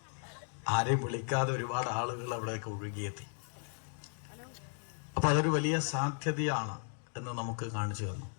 ആരെയും വിളിക്കാതെ ഒരുപാട് ആളുകൾ അവിടെയൊക്കെ ഒഴുകിയെത്തി. അപ്പൊ അതൊരു വലിയ സാധ്യതയാണ് എന്ന് നമുക്ക് കാണിച്ചു തന്നു.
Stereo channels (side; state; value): right; silent; 54 dB below the other